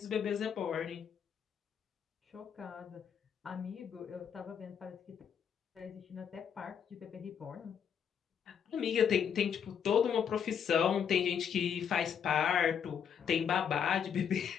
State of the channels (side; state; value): right; quieter; 7.8 dB